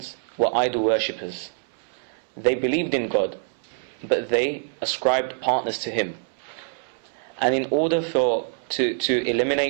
were idol worshippers. They believed in God, but they ascribed partners to Him. And in order to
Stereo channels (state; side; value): silent; left; 62 dB below the other